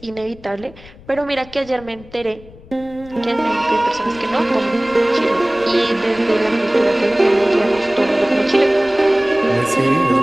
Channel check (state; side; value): noise; left; rumble, 21 dB below the sound